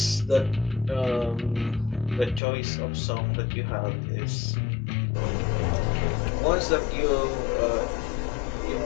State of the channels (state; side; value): drops out; right; at 2.4 s